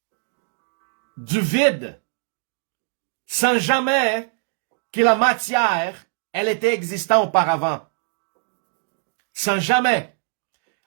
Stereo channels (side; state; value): left; silent; 63 dB below the other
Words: du vide, sans jamais que la matière, elle était existante auparavant. Sans jamais.